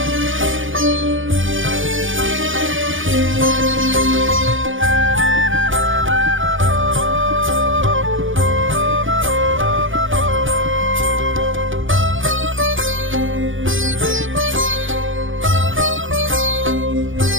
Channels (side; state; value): left; late; 0.57 ms